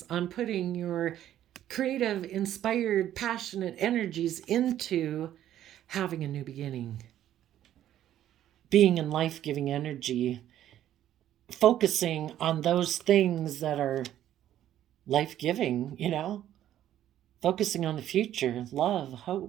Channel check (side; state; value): left; quieter; 11.8 dB